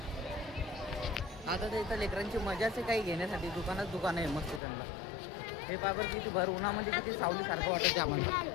आता तर इथं लेकरांची मजाच आहे काही घेण्यासाठी. दुकान आहे मस्त त्यांना. हे पायबर किती भर उन्हामध्ये किती सावली सारखं वाटत आम्हाला.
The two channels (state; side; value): drops out; right; at 4.6 s